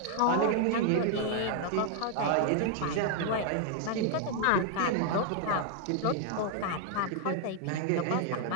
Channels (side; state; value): both; different; correlation 0.00